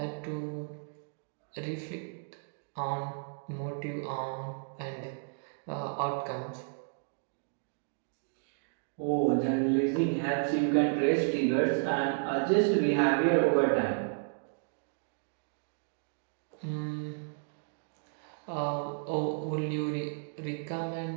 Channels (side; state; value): left; silent; digital silence